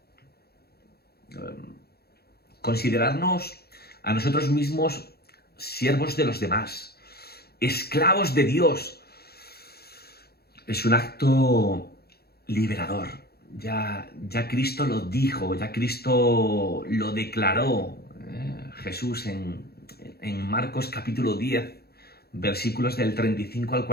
Considerarnos a nosotros mismos siervos de los demás, esclavos de Dios, es un acto liberador. Ya Cristo lo dijo, ya Cristo lo declaró. Jesús en Marcos capítulo 10, versículos del 35 al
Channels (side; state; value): right; late; 0.46 ms